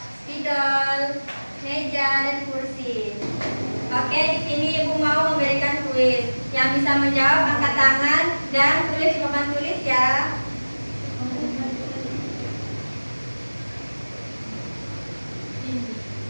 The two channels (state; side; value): inverted; both; correlation -1.00